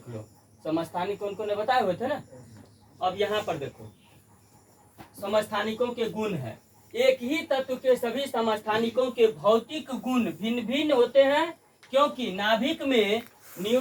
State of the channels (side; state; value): both; identical; correlation 1.00